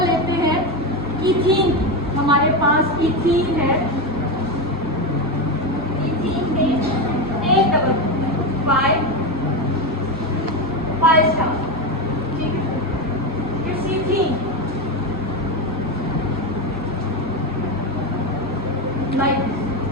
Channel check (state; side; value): normal; both; correlation 0.14